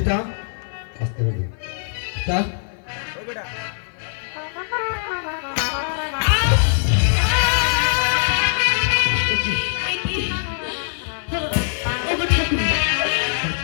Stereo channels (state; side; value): silent; right; 55 dB below the other